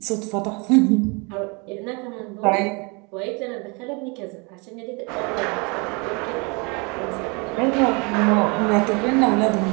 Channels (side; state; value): left; quieter; 30.5 dB